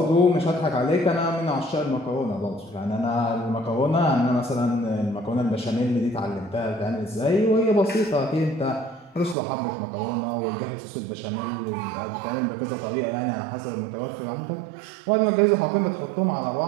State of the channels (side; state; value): left; drops out; at 9.3 s